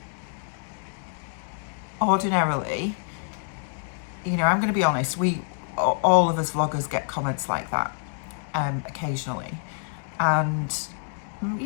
ordinarily, you know, I'm going to be honest, all of us vloggers get comments like that occasionally, and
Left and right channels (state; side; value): silent; right; 60 dB below the other